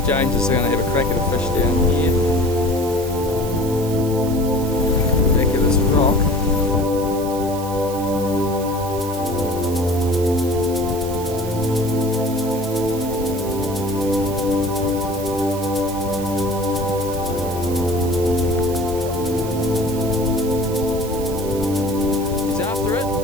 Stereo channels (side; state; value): right; noise; hiss, 14 dB below the sound